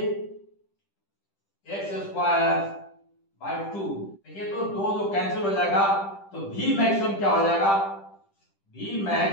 x square by 2। देखिए तो दो कैंसिल हो जाएगा, तो वी मैक्सिमम क्या हो जाएगा? V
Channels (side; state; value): right; late; 10 ms